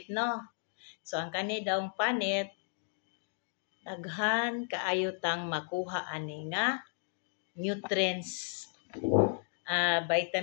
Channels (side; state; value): right; silent; 55 dB below the other